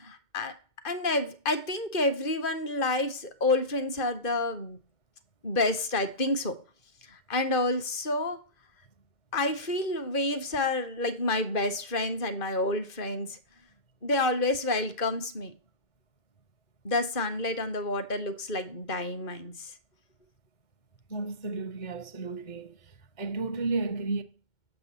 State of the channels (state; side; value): late; right; 2.1 ms